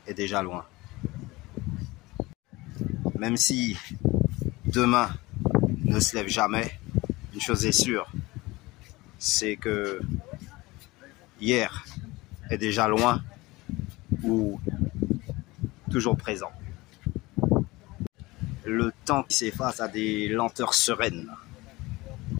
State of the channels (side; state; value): right; quieter; 21.2 dB